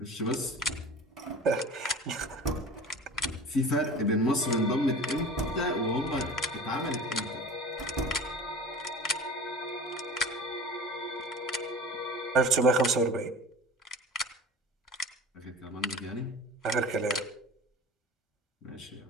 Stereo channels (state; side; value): normal; both; correlation 0.37